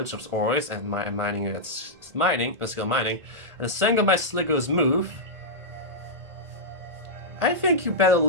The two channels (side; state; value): left; late; 1.5 ms